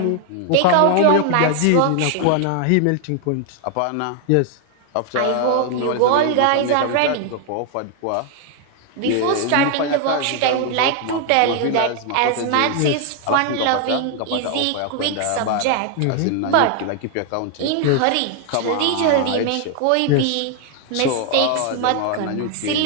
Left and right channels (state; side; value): different; both; correlation 0.00